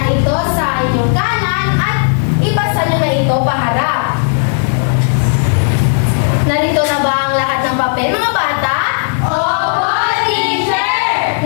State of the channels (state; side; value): silent; right; digital silence